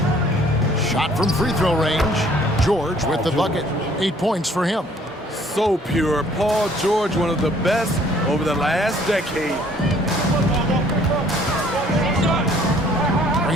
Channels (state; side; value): normal; both; correlation 0.58